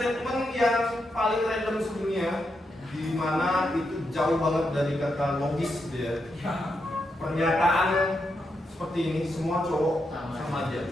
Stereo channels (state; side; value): normal; both; correlation 0.83